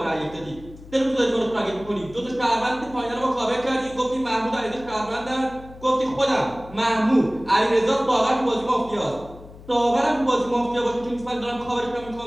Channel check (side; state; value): left; noise; hum, 18 dB below the sound